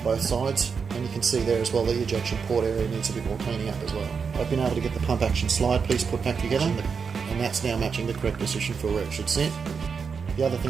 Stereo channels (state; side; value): quieter; left; 5.8 dB